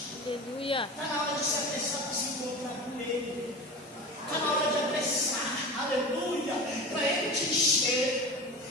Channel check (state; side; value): normal; both; correlation 0.31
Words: Aleluia. Está na hora de se apressar para se encontrar com Ele. Está na hora de apressar. Aleluia. Para Ele te encher.